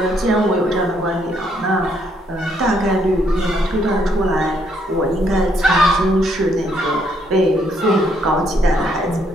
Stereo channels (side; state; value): both; normal; correlation 0.71